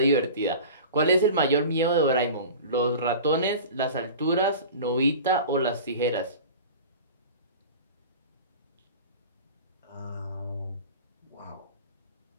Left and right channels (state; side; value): inverted; both; correlation -0.36